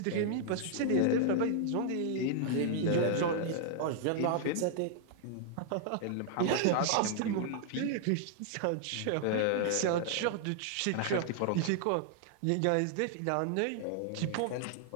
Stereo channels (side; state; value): both; different; correlation -0.01